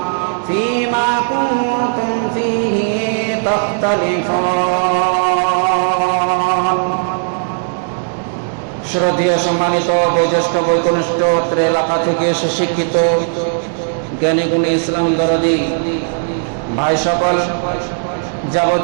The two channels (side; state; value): left; silent; digital silence